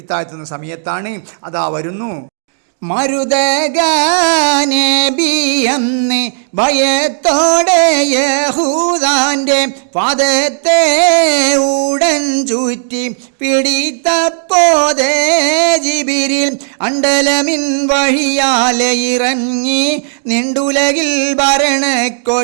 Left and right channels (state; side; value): silent; left; digital silence